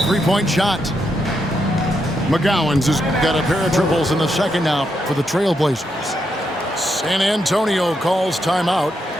three-point shot. McGowan's has got a pair of triples in the 2nd now for the Trailblazers. San Antonio calls timeout.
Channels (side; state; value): both; normal; correlation 0.81